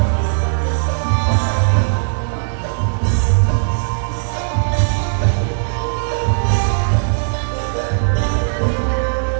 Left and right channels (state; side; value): silent; left; digital silence